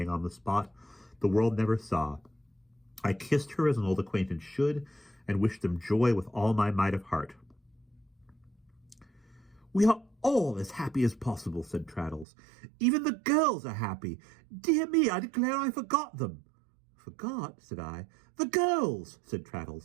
on the spot, the world never saw. I kissed her as an old acquaintance should, and wished them joy with all my might of heart. "We are all as happy as possible," said Traddles. "Even the girls are happy. Dear me, I declare I forgot them." "Forgot?" said I. "The girls," said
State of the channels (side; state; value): left; drops out; at 12.2 s